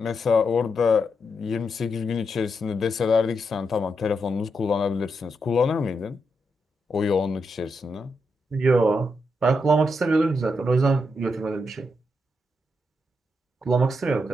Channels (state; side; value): normal; both; correlation 0.82